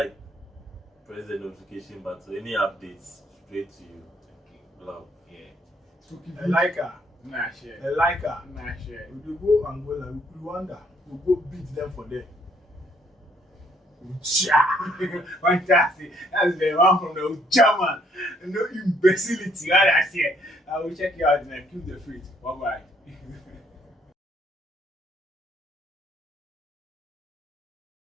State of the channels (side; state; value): both; normal; correlation 0.67